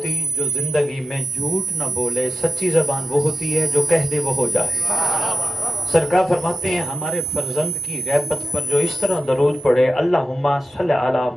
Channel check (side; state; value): both; normal; correlation 0.92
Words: جو زندگی میں جھوٹ نہ بولے, سچی زبان وہ ہوتی ہے جو کہہ دے وہ ہو جائے. سرکار فرماتے ہیں ہمارے فرزند کی غیبت پر جو اس طرح درود پڑھے, اللہم صلی علی